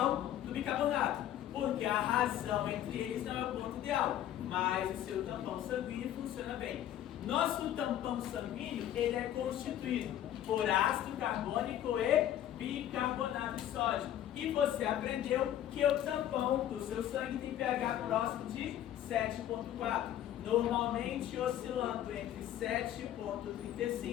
do bicarbonato, porque a razão entre eles não é o ponto ideal, mas o seu tampão sanguíneo funciona bem. Nosso tampão sanguíneo, ele é constituído por ácido carbônico e bicarbonato de sódio. E você aprendeu que o tampão do seu sangue tem pH próximo de 7,4. Normalmente oscilando entre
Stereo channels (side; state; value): right; quieter; 11.7 dB